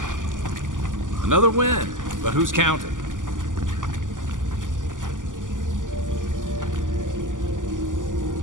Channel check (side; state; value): left; late; 0.88 ms